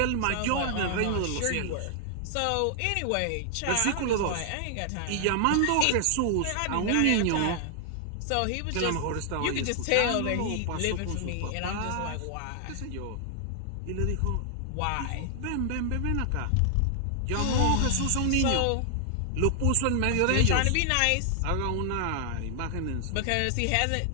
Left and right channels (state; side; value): different; both; correlation 0.00